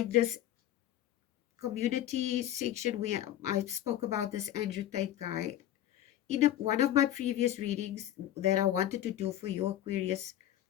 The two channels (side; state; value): right; quieter; 12.5 dB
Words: this community section where I spoke about this Andrew Tate guy. In one of my previous readings that I wanted to do for your Aquarius,